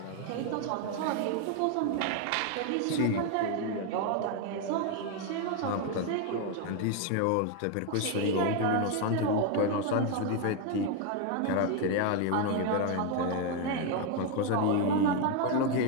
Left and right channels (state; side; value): different; both; correlation 0.01